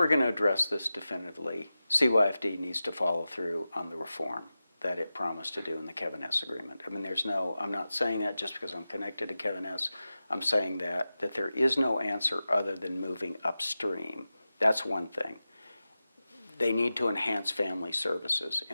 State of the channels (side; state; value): both; inverted; correlation -0.94